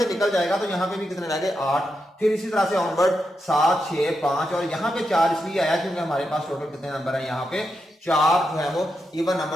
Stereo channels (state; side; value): normal; both; correlation 0.86